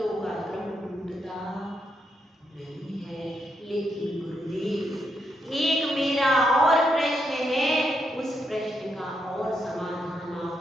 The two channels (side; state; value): both; normal; correlation 0.80